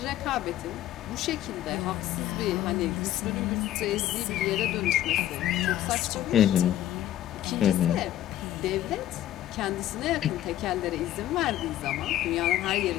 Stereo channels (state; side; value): quieter; right; 13.0 dB